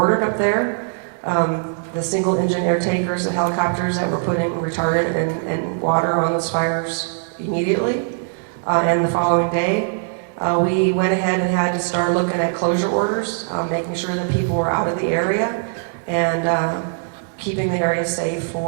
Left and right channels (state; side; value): silent; left; digital silence